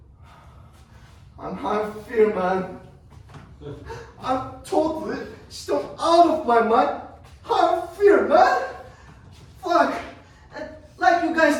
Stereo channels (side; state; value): both; identical; correlation 1.00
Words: I'm high of fear, man. I'm totally still out of my mind. High of fear, man. Fuck. And like you guys